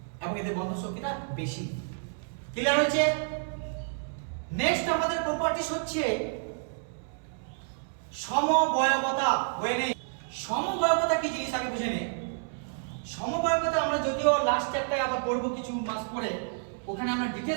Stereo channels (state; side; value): silent; left; 58 dB below the other